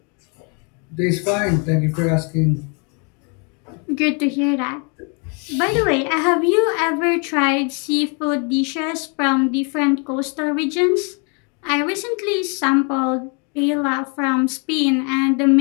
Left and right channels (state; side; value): quieter; right; 35.7 dB